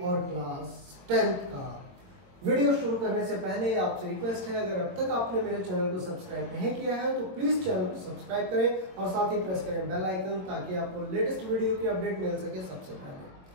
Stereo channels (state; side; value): late; left; 22 ms